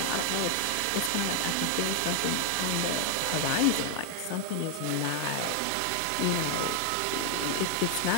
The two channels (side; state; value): both; different; correlation 0.00